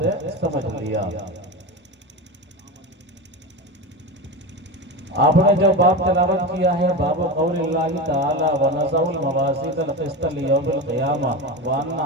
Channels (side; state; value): both; normal; correlation 0.21